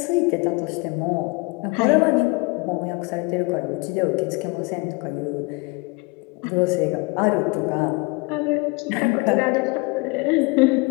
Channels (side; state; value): right; quieter; 27.4 dB